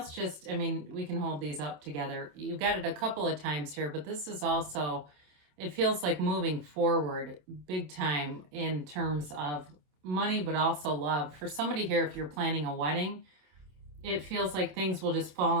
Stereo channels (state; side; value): late; left; 27 ms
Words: can hold these up together. You've got it a couple of times here, but this is also, it feels like moving forward big time in terms of money, but also love. For somebody here, if you're planning a wedding, it feels like things will just fall